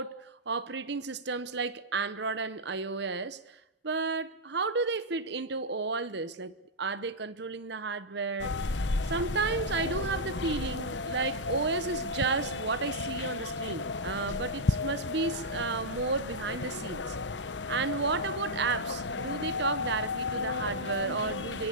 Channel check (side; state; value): both; normal; correlation -0.06